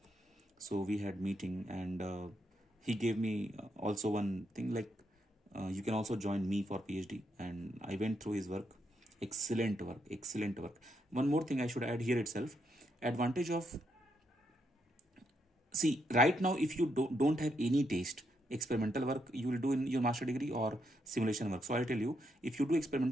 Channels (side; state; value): both; normal; correlation 0.79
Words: So we had meeting, and he gave me also one thing, like you can also join me for PhD. And I went through his work. Excellent work. One more thing I should add here itself. Advantage of, see, right now, if you don't have any taste, experimental work you will do in your master degree or simulation work. So I'll tell you, if you do